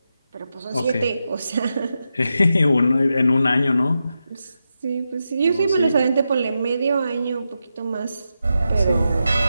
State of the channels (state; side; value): inverted; both; correlation -0.88